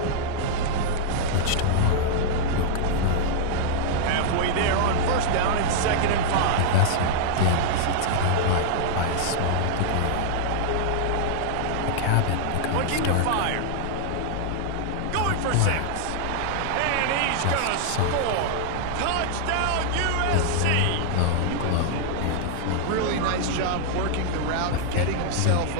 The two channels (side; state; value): both; different; correlation -0.01